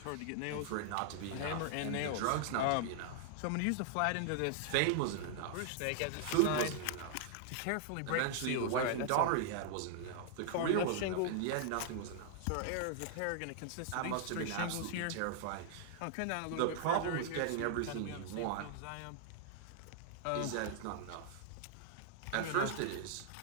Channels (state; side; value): different; both; correlation -0.01